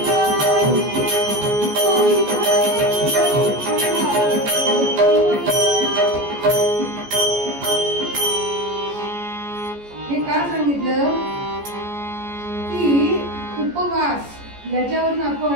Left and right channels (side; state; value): left; late; 14 ms